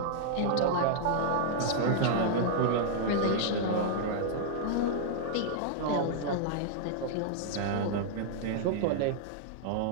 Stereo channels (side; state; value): both; different; correlation -0.01